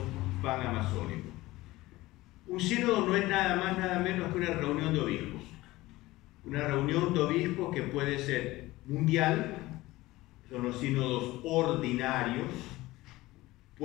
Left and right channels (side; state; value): right; quieter; 18.6 dB